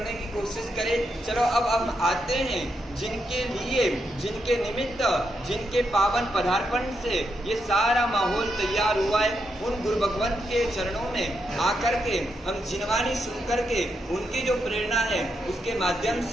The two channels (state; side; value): normal; both; correlation 0.82